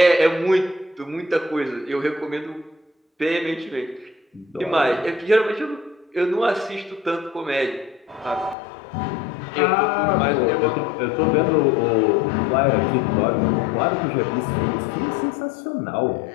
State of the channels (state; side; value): drops out; right; at 8.6 s